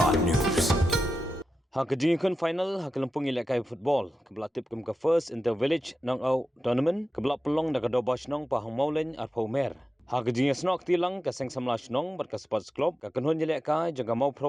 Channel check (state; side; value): normal; both; correlation 0.91